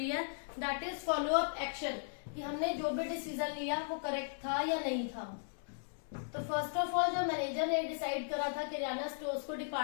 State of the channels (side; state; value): right; silent; digital silence